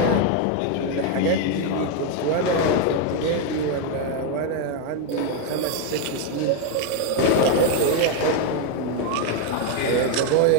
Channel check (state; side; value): different; both; correlation 0.01